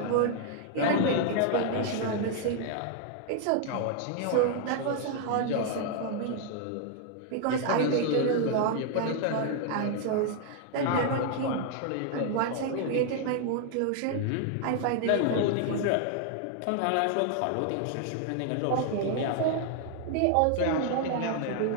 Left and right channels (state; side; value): different; both; correlation 0.00